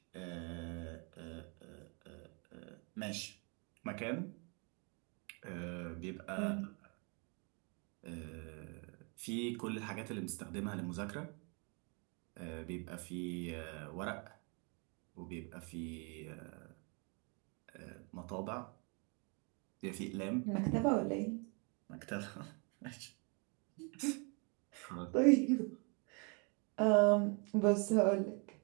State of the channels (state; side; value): quieter; left; 34.5 dB